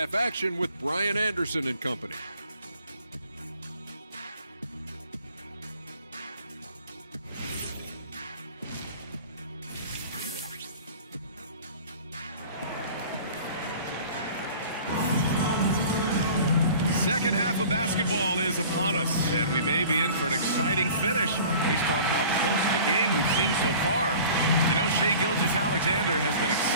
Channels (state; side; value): inverted; both; correlation -0.45